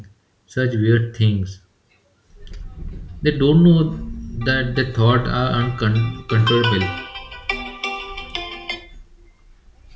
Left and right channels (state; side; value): identical; both; correlation 1.00